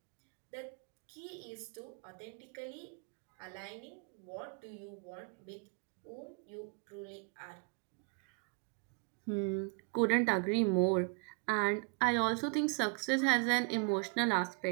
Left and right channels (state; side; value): quieter; left; 33.7 dB